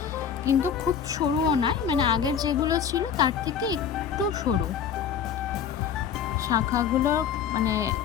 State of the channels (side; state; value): right; quieter; 7.9 dB